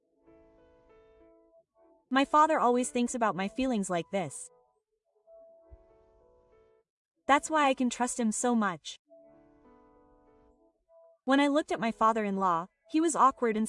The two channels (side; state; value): both; identical; correlation 1.00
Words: My father always thinks about my feelings like this. That's why I can trust him so much. When I looked at my father-in-law, he was awkward and